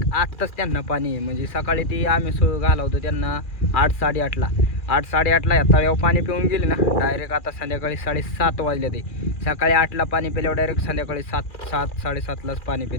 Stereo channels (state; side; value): late; right; 2.4 ms